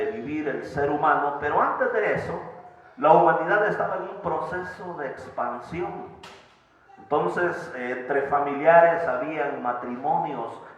vivir el ser humano. Pero antes de eso, la humanidad estaba en un proceso de expansión. Entonces, entre familiares habían matrimonios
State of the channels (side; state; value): both; identical; correlation 1.00